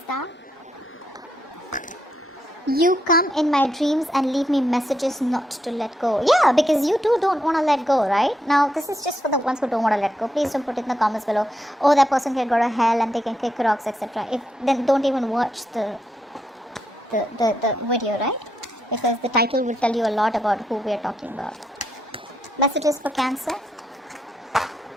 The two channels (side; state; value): both; normal; correlation 0.80